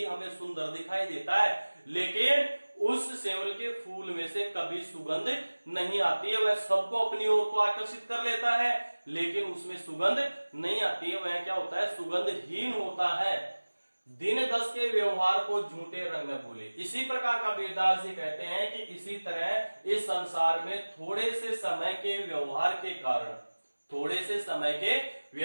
हमें सुंदर दिखाई देता है, लेकिन उस सेवल के फूल में से कभी सुगंध नहीं आती है। वह सबको अपनी ओर को आकर्षित कर लेता है, लेकिन उसमें सुगंध नहीं आती है। वह क्या होता है, सुगंधहीन होता है। दिन 10 के व्यवहार को झूठे रंग में भूले। इसी प्रकार कबीरदास जी कहते हैं कि इसी तरह इस संसार में थोड़े से समय के व्यवहार के कारण, थोड़े से समय के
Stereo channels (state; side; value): inverted; both; correlation -1.00